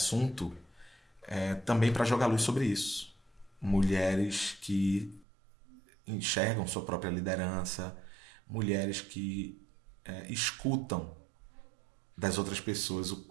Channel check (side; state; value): left; drops out; at 5.2 s